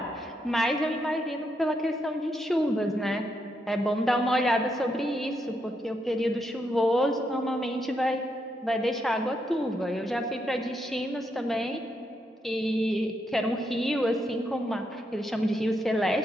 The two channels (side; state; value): both; normal; correlation 0.80